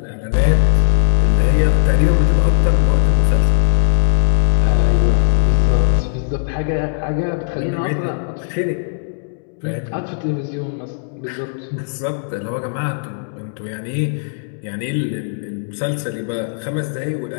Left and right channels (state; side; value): silent; right; digital silence